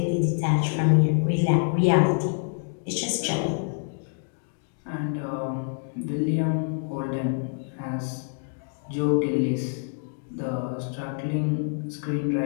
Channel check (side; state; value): right; silent; 61 dB below the other